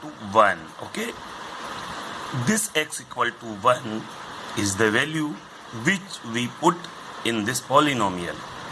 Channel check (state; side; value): identical; both; correlation 1.00